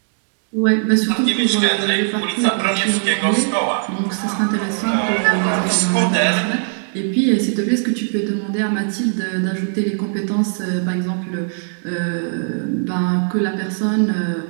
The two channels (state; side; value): silent; left; digital silence